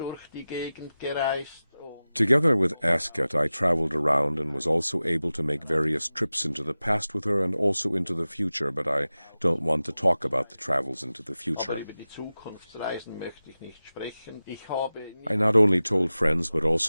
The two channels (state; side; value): inverted; both; correlation -0.95